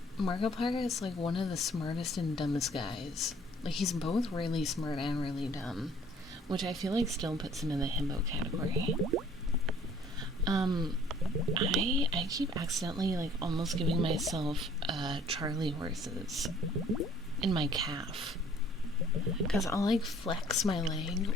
Markiplier is like one of the smartest and dumbest guys. Like, he's both really smart and really dumb, which I feel like still puts him in the himbo category. I keep accidentally, like, almost giving myself, Charlie horses in my calf. Because I'll, like, flex my leg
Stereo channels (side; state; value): both; normal; correlation 0.56